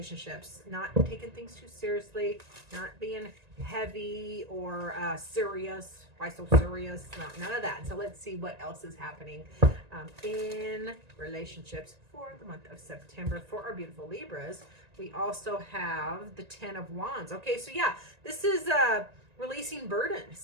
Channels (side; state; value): left; late; 1.9 ms